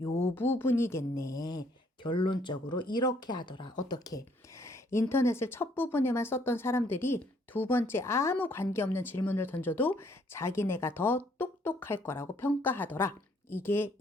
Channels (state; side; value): normal; both; correlation 0.66